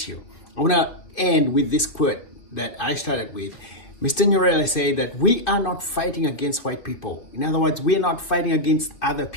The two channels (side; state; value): right; late; 2.6 ms